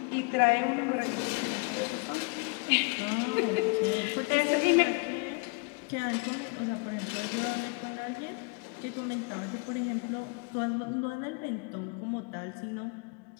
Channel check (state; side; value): quieter; right; 32.0 dB